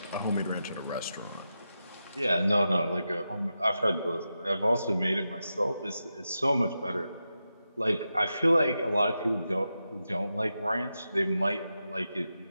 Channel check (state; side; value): inverted; both; correlation -0.89